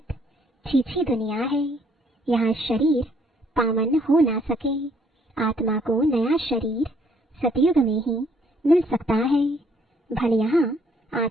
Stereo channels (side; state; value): both; normal; correlation 0.66